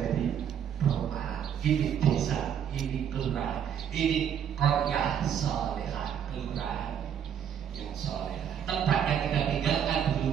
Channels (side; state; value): left; quieter; 8.8 dB